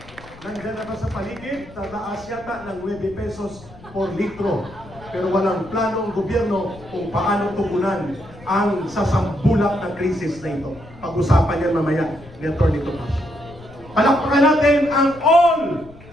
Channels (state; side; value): noise; left; rumble, 20 dB below the sound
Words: nandiyan na ba sa paligid? Tataas yata ng 9 pesos por litro. Pero walang plano ang gobyerno kung paano tugunan ang sasambulak na krisis na ito. Pag-usapan yan mamaya ni Atty. Tupacio. Palakpakan natin ang All